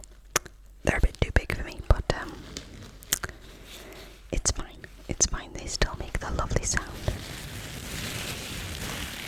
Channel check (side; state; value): both; identical; correlation 1.00